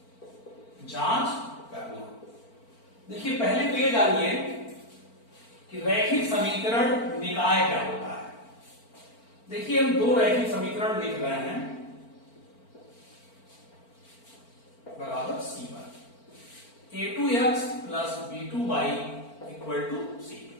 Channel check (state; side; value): late; right; 4.4 ms